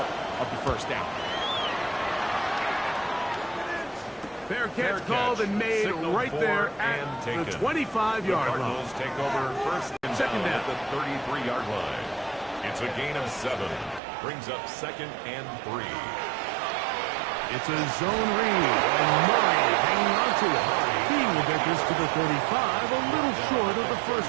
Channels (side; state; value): left; drops out; at 14.0 s